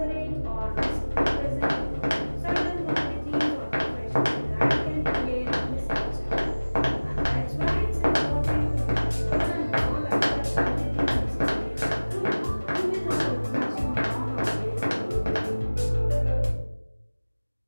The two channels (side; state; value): both; inverted; correlation -1.00